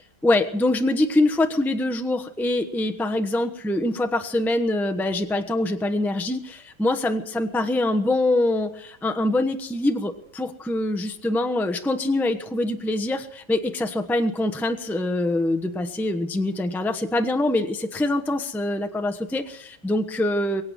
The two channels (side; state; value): both; normal; correlation 0.81